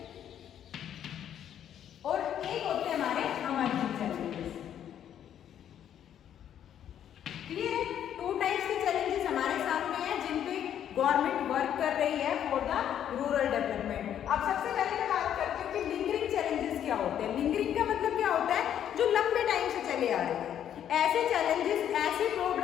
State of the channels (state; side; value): quieter; right; 10.0 dB